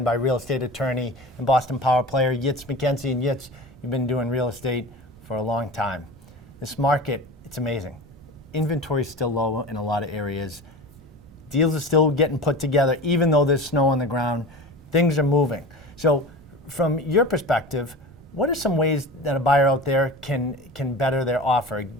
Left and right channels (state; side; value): noise; right; rumble, 25 dB below the sound